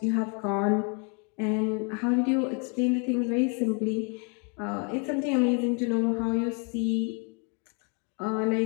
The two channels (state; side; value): quieter; right; 36.6 dB